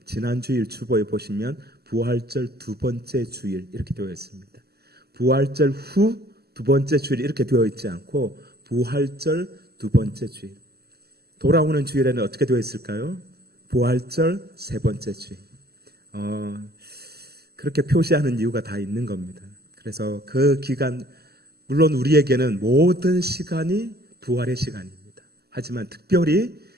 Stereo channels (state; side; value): late; left; 0.46 ms